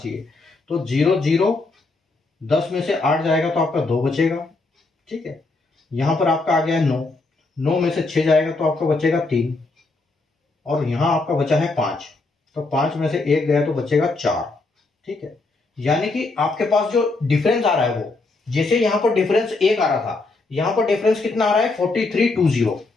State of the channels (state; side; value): quieter; right; 3.5 dB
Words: तो 0 10 में से 8 जाएगा तो आपका 2 बचेगा, ठीक है। यहां पर आपका आ गया 9 में से 6 जाएगा तो आपका बचेगा 3, और यहां आपका बचा है 5, तो 5 में से 1 गया तो बचेगा 4, ठीक है। यानी कि आपके पास जो डिफरेंस आ रहा है वो, जैसे यहां पर डिफरेंस 1 आ रहा था, यहां पर डिफरेंस कितना आ रहा है 4320,